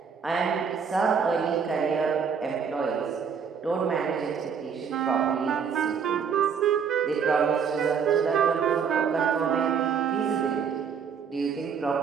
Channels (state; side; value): quieter; left; 6.7 dB